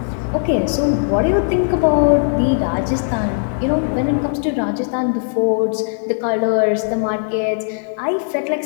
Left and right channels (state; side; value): silent; right; 58 dB below the other